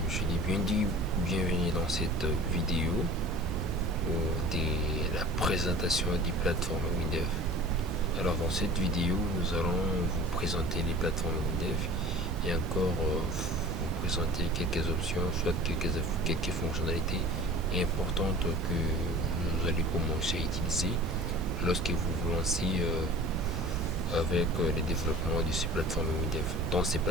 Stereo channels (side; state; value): both; normal; correlation 0.42